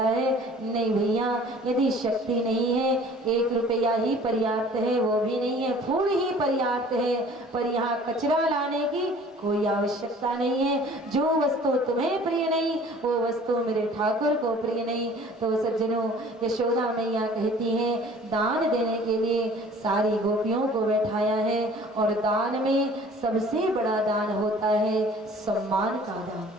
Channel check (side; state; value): both; normal; correlation 0.49